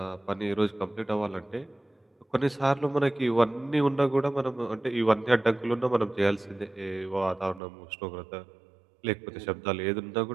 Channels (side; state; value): left; drops out; at 7.6 s